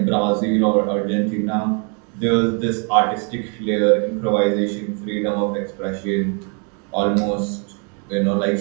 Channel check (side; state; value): left; quieter; 37.9 dB